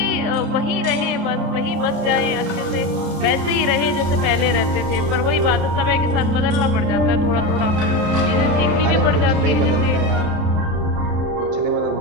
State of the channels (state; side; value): late; left; 33 ms